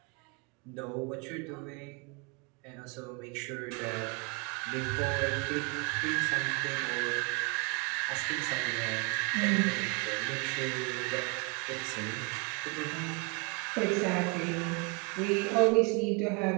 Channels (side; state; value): left; quieter; 31.3 dB